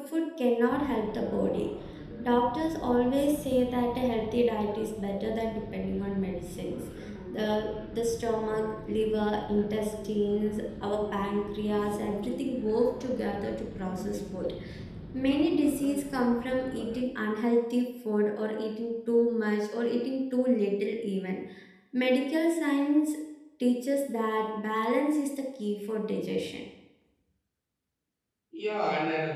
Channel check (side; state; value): both; identical; correlation 1.00